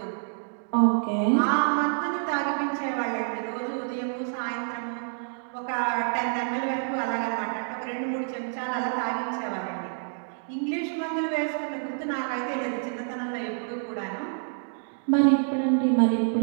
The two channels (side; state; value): left; silent; digital silence